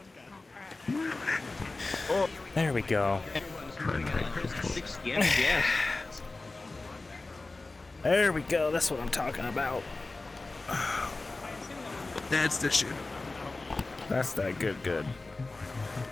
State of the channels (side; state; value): right; quieter; 3.3 dB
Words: There we go. Yes. There we go. That's what I'm talking about. That's the shit. That's that good.